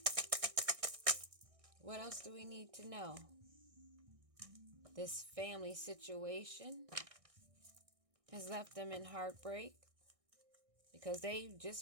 What else do we need to know? This family situation has left them in heartbreak because they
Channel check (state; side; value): late; left; 1.6 ms